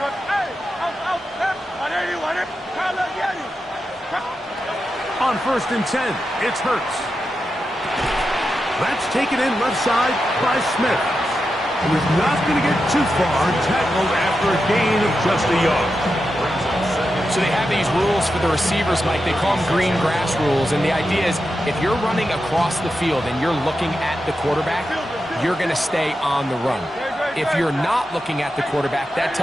On first and 10, it's Hurts. That's taken in left side by Smith. He was not going to get too far, tackled after a gain of just a yard. So they have these rules for the receivers, Mike. They call them green grass rules. And the idea is if you're running across the field and you're looking at the quarterback, you're going to stay on the run. If you're not looking at the quarterback, that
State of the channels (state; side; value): normal; both; correlation 0.89